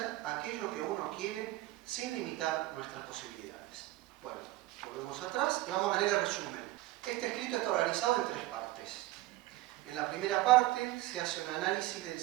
aquello que uno quiere sin limitar nuestras posibilidades. Bueno, volvemos atrás y vamos a leer el resumen. Este escrito está organizado en 3 partes. En la primera parte se hace un análisis del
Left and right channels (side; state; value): left; quieter; 17.6 dB